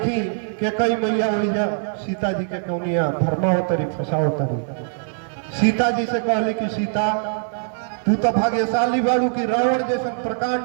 के कई मैया ओइजा सीता जी के कौनिया धर्मावतरी फसावतरी। सीता जी से कहली कि सीता तू तो भाग्यशाली बाड़ू कि रावण जैसा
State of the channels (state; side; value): silent; left; digital silence